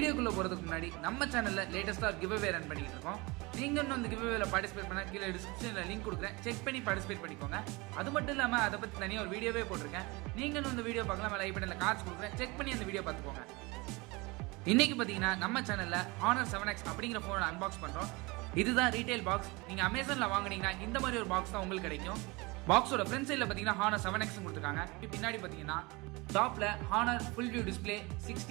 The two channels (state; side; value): quieter; left; 24.9 dB